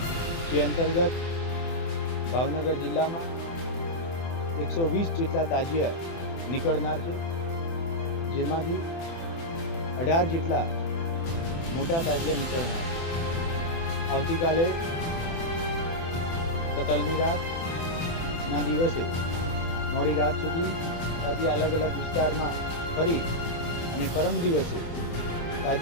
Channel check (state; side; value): late; right; 24 ms